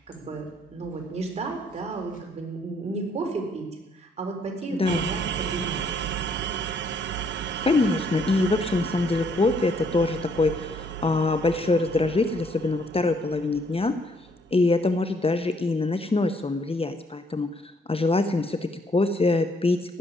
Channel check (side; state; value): both; normal; correlation 0.68